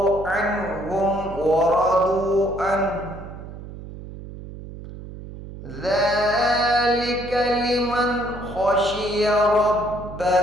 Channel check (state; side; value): noise; right; hum, 13 dB below the sound